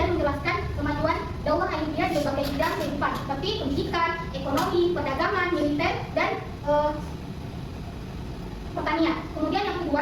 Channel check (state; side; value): identical; both; correlation 1.00